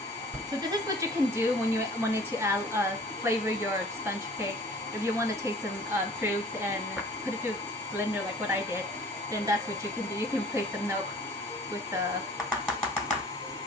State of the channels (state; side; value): normal; both; correlation 0.49